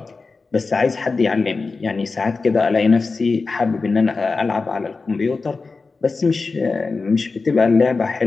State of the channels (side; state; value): right; quieter; 4.1 dB